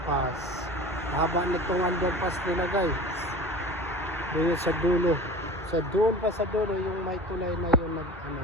Haba nitong underpass nila guys. Doon sa dulo. Sa doon pa sa dulo. Yung may tulay na yun.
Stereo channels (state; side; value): normal; both; correlation 0.37